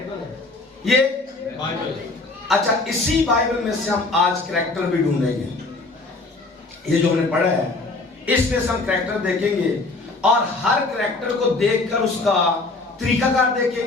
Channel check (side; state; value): right; quieter; 3.4 dB